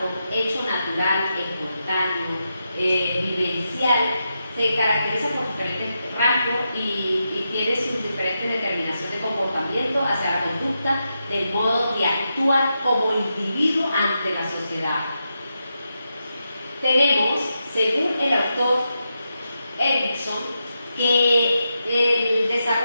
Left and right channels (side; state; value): both; inverted; correlation -0.87